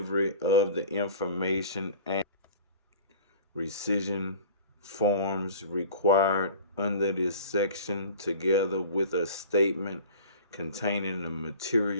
of the information and rescission forms required under this section, together with a statement containing the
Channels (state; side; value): inverted; both; correlation -0.42